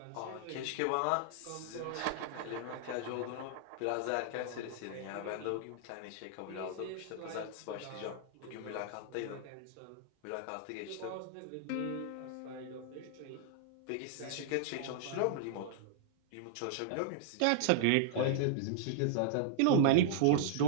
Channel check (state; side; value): different; both; correlation -0.01